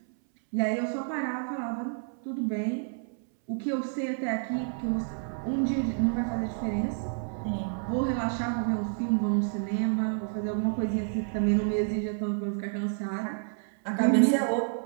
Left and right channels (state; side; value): silent; left; 58 dB below the other